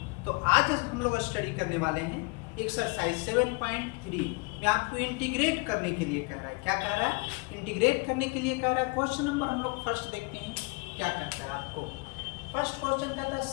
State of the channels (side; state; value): right; quieter; 29.8 dB